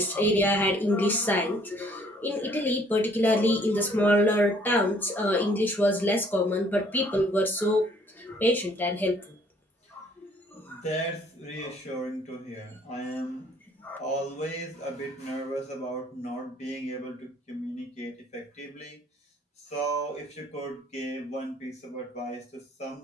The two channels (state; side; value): normal; both; correlation 0.61